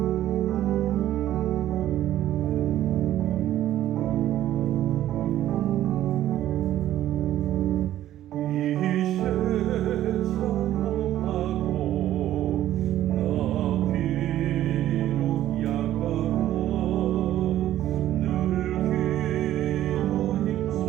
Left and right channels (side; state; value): left; quieter; 12.9 dB